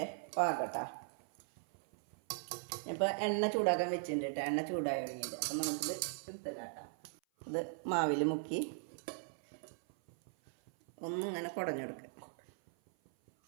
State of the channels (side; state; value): left; silent; 52 dB below the other